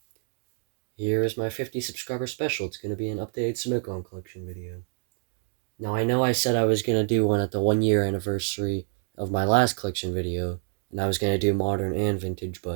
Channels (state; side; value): silent; left; digital silence